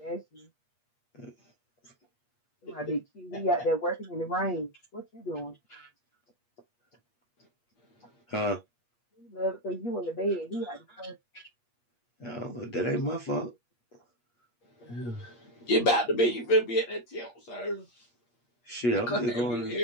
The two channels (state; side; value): late; right; 8.4 ms